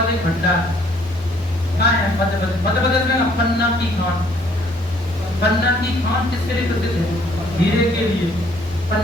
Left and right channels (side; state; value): both; normal; correlation 0.62